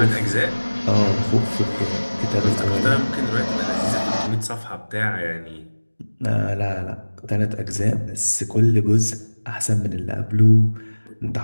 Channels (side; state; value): both; inverted; correlation -1.00